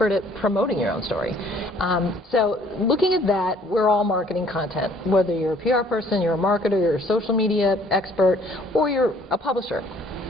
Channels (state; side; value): normal; both; correlation 0.59